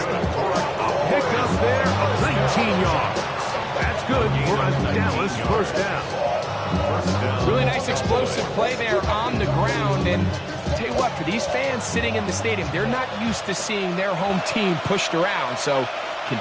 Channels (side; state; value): both; identical; correlation 1.00